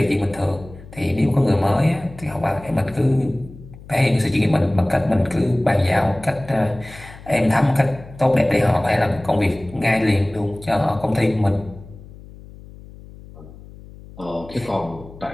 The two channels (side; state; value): left; noise; hum, 18 dB below the sound